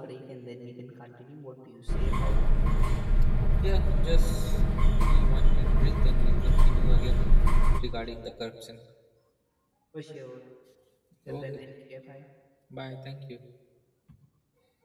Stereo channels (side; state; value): both; identical; correlation 1.00